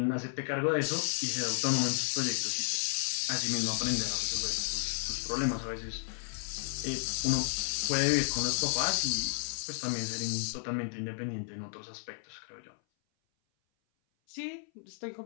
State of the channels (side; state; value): right; silent; 56 dB below the other